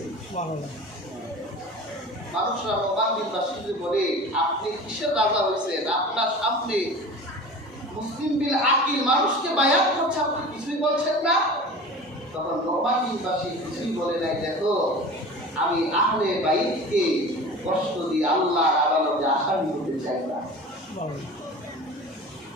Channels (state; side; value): normal; both; correlation 0.37